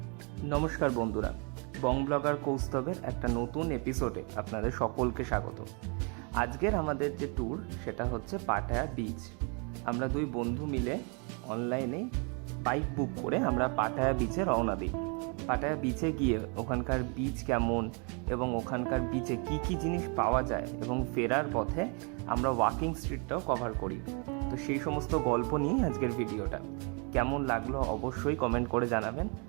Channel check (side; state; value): left; quieter; 35.4 dB